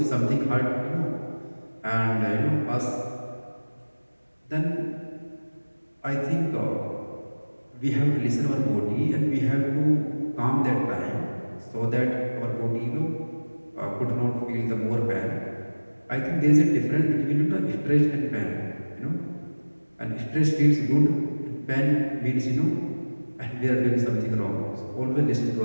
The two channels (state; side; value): inverted; both; correlation -1.00